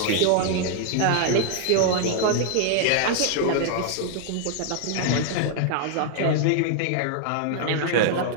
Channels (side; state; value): both; different; correlation 0.00